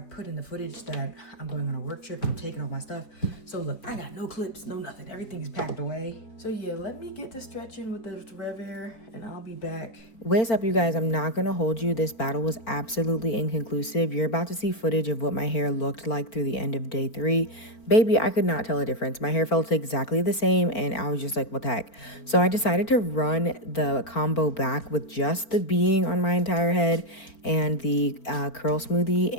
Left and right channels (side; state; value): right; late; 4.4 ms